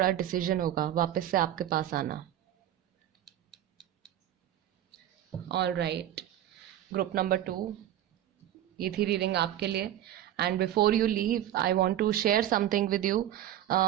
डिसीजन होगा वापस से आपके पास आना। ऑल राइट, ग्रुप नंबर 2, ये थी रीडिंग आपके लिए। And before you leave I want to share something with you.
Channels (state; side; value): quieter; left; 12.0 dB